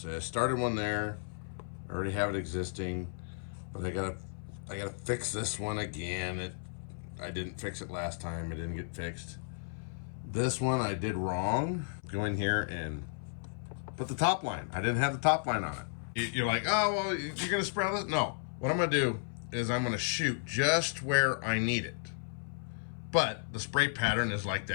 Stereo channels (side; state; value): right; silent; 55 dB below the other